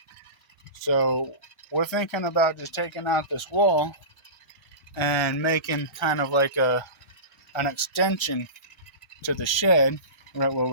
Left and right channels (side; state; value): right; late; 1.2 ms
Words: So we're thinking about just taking out this wall and making kind of like an extension to the shed right where